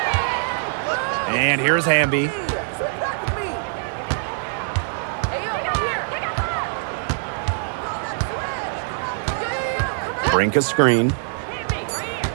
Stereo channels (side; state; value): left; silent; digital silence